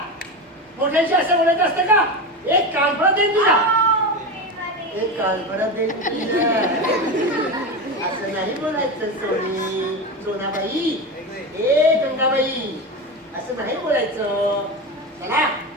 मोठ्यांशी असं बोलायचं असतं का एक कालपणा देईन तुला हो, प्रेमाने. एक कालपणा देईन तुला असं नाही बोलायचं सोनी सोनाबाई ए गंगाबाई असं नाही बोलायचं चला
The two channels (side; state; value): both; normal; correlation 0.20